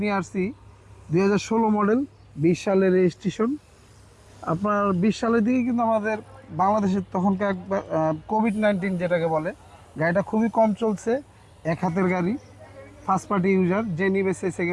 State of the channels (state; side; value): identical; both; correlation 1.00